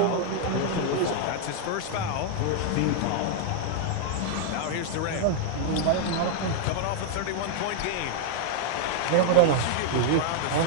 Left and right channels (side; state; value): both; different; correlation 0.00